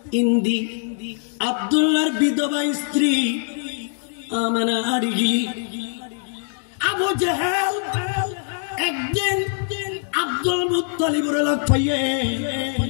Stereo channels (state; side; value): silent; right; 57 dB below the other